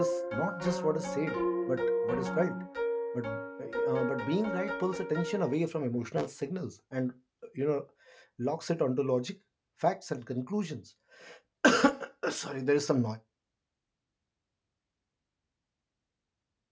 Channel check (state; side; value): identical; both; correlation 1.00